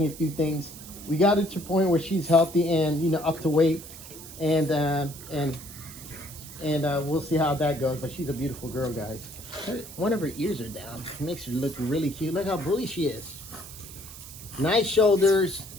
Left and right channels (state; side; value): noise; right; hiss, 15 dB below the sound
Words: a few things. We got her to a point where she's healthy and, you know, up to weight, and we'll see how that goes. But she's a beautiful girl, guys. One of her ears are down. It makes her look really cute. Look how bully she is. Nice shoulders,